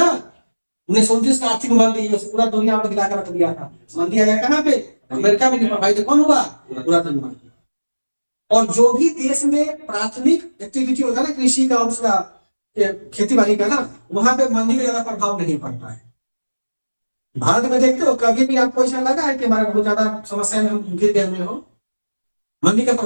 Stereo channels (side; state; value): both; inverted; correlation -1.00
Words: 1929 का आर्थिक मंदी पूरा दुनिया में गिरा कर रख दिया था। मंदी आया कहाँ पे, अमेरिका में नहीं, भाई तो कौन हुआ, पूरा दुनिया। और जो भी देश में प्राथमिक एक्टिविटी होता है ना, कृषि का, उसका खेती बाड़ी का ना, वहां पे मंदी का ज्यादा प्रभाव नहीं पड़ता है। भारत में देखते हो कभी भी आपको ऐसा लगा है कि हमारे बहुत ज्यादा समस्या में हम गिर गए हुए हो, मंदी का